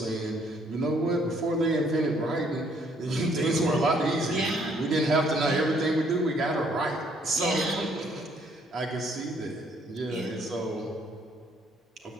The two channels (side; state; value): both; normal; correlation 0.65